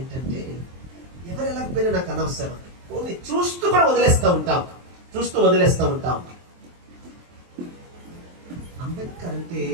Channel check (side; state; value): left; late; 23 ms